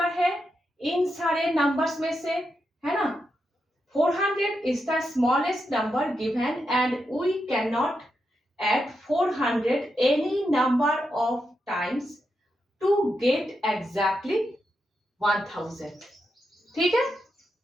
है इन सारे नंबर्स में से, है ना। 400 is the smallest number given and we cannot add 400 any number of times to get exactly 1000, ठीक है।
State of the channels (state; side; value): normal; both; correlation 0.85